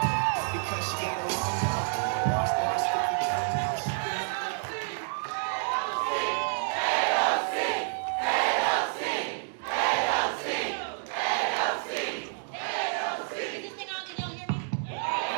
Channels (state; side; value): silent; left; 59 dB below the other